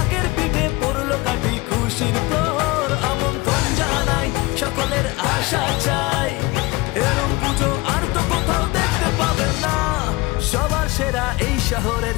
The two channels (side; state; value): right; quieter; 22.2 dB